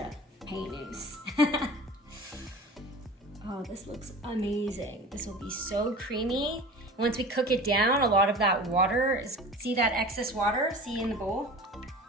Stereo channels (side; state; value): both; normal; correlation 0.38